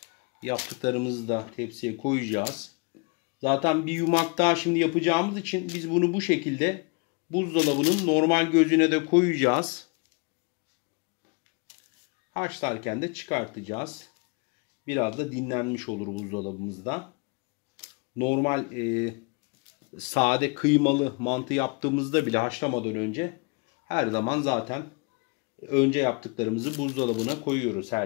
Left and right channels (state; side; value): quieter; right; 31.3 dB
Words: Yaptıklarımızı da tepsiye koyacağız. Zaten bir yumak daha şimdi yapacağımız için biz bunu bu şekilde buzdolabının normal gözüne de koyacağız. Haşlarken de çıkartacağız. Biraz da dinlenmiş olur buzdolabımızda. Normal sade kıymalı mantı yaptığımızda bile haşlamadan önce her zaman zaten önce yaptıklarımızı buzdolabına koyuyoruz